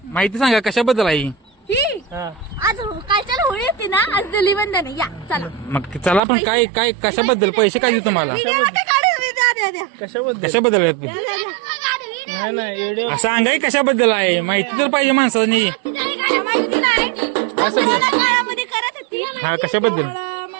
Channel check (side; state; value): left; drops out; at 6.2 s